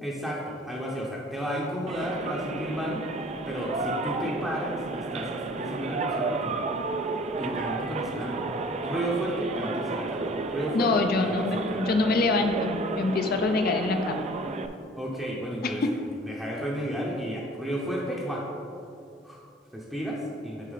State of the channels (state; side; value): normal; both; correlation 0.49